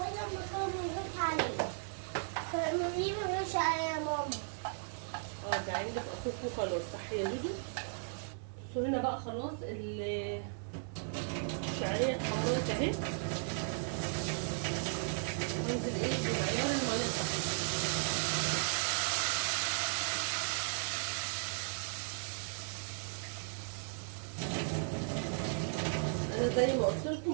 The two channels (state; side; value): silent; left; digital silence